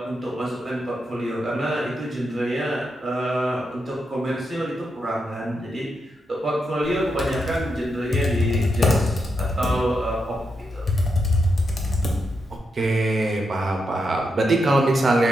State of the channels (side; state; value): both; normal; correlation 0.84